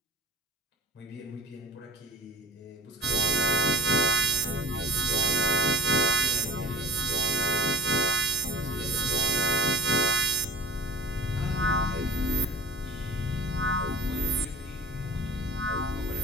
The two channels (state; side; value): normal; both; correlation 0.42